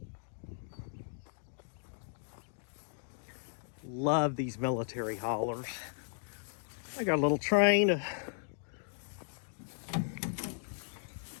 Love these military haulers. I got a little train.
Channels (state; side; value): silent; right; digital silence